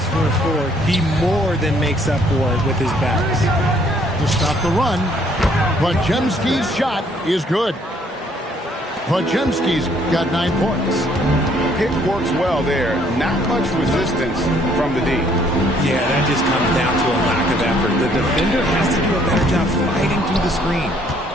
for a 4, he more than makes up for it with his bounce. To stop the run, Podziemski's shot is good. Podziemski's got 9 points. Pick works well there. Not much resistance from the D. Yeah, that just comes down to a lack of effort. The defender has to do a better job fighting through the screen.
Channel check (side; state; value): both; normal; correlation 0.64